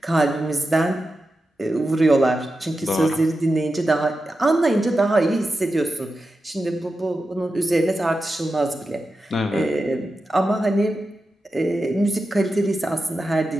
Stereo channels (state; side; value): normal; both; correlation 0.91